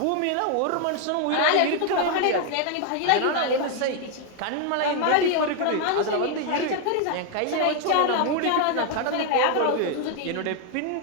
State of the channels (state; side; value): different; both; correlation 0.00